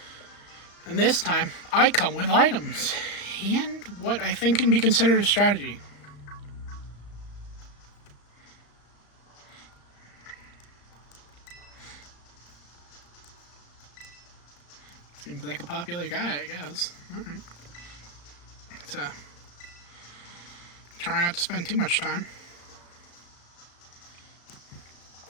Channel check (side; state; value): right; late; 35 ms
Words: And this time, I come with items. And what I think can be considered a strategy. Seems like a popular guy, I guess. Alright. So, try not to spend too much time.